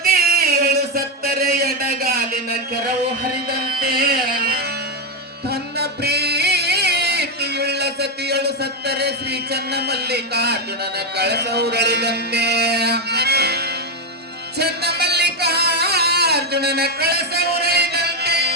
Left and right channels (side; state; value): both; normal; correlation 0.06